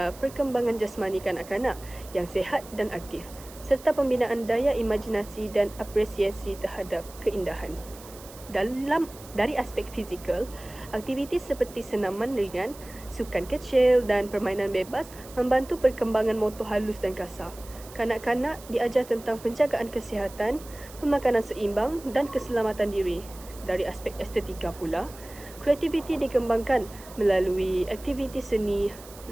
perkembangan jasmani kanak-kanak yang sihat dan aktif serta pembinaan daya imajinasi dan apresiasi terhadap keindahan. Dari aspek fizikal, aktiviti seperti senaman ringan, sukan kecil dan permainan bebas membantu perkembangan motor halus dan kasar. Kanak-kanak diajar tentang penjagaan kesihatan, pemakanan seimbang dan keselamatan diri. Dari aspek estetika pula, kreativiti dikembangkan melalui aktiviti seni,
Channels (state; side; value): noise; right; hiss, 19 dB below the sound